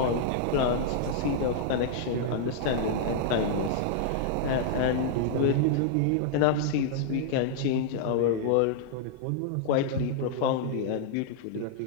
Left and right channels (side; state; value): both; different; correlation -0.01